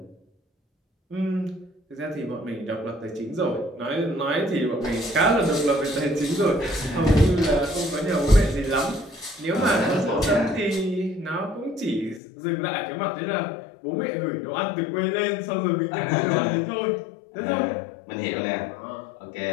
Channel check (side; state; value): right; drops out; at 12.2 s